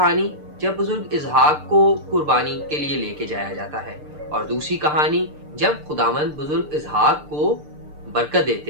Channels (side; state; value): left; late; 6.7 ms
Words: जब बुजुर्ग इसहाक को कुर्बानी के लिए लेके जाया जाता है, और दूसरी कहानी जब खुदावंद बुजुर्ग इसहाक को बरकत देते